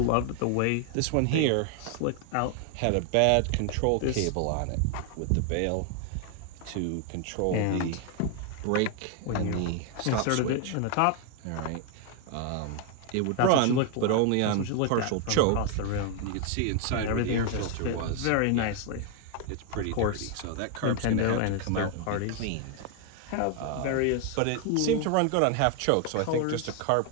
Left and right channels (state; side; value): different; both; correlation 0.00